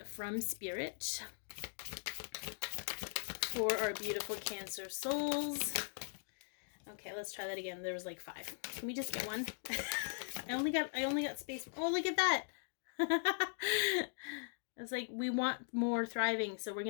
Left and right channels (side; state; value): right; silent; digital silence